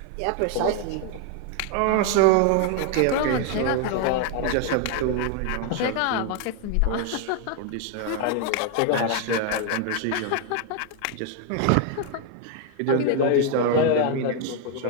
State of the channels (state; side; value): different; both; correlation 0.00